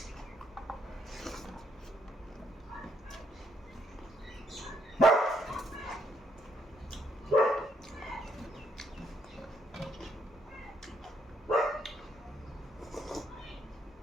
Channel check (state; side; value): normal; both; correlation 0.72